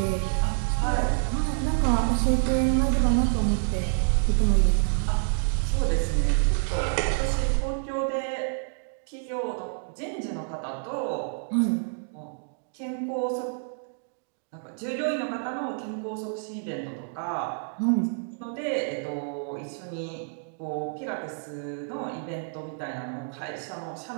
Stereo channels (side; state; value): left; silent; digital silence